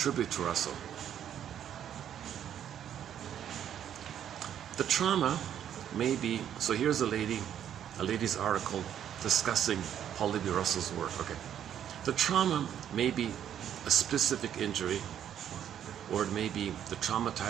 to Russell. The trauma may be, so here's a lady's article discussing Paul Libby Russell's work. Okay, the trauma may be a specific injury, or it may be the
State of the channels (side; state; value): left; quieter; 9.8 dB